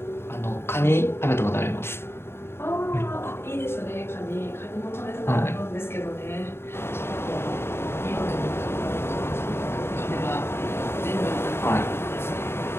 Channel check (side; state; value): right; late; 0.12 ms